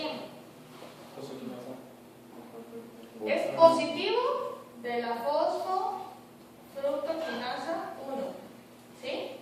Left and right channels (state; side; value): identical; both; correlation 1.00